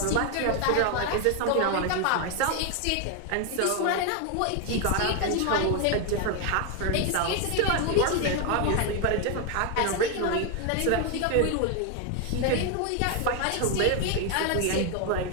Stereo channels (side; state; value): both; different; correlation 0.01